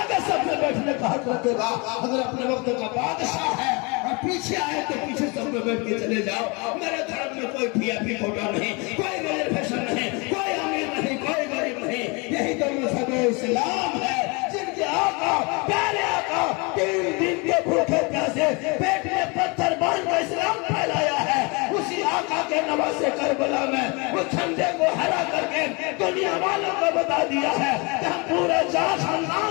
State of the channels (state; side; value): quieter; right; 29.4 dB